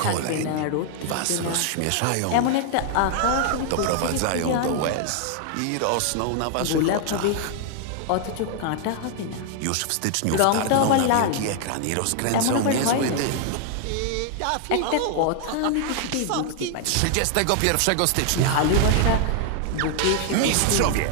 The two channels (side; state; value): both; different; correlation 0.00